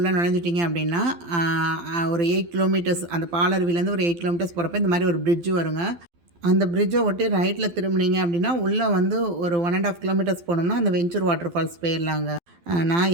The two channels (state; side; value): late; left; 12 ms